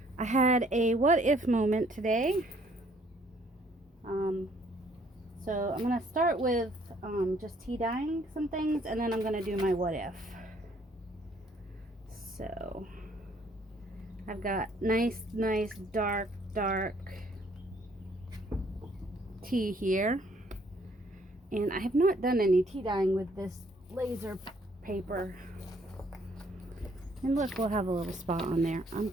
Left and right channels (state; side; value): normal; both; correlation 0.64